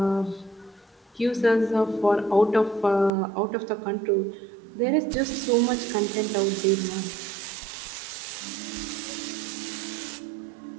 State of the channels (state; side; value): drops out; left; at 3.1 s